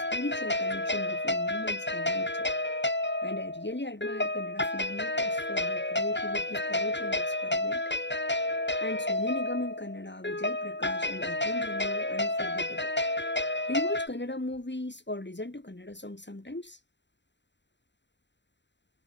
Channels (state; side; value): late; right; 0.52 ms